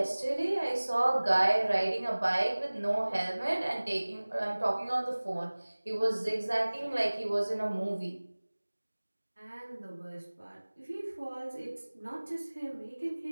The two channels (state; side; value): inverted; both; correlation -1.00